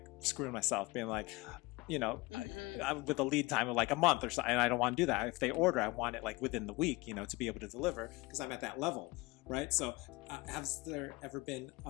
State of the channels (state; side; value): quieter; right; 23.0 dB